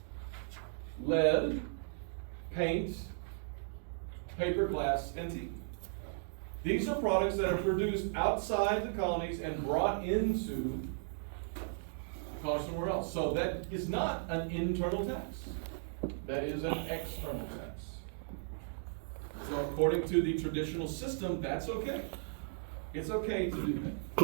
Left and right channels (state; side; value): silent; left; digital silence